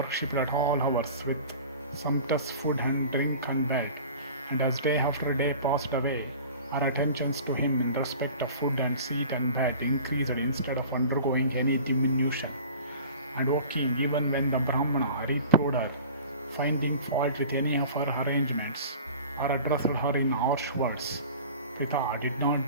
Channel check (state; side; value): inverted; both; correlation -0.42